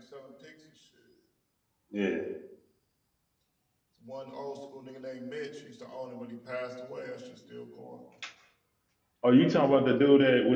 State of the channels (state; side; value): identical; both; correlation 1.00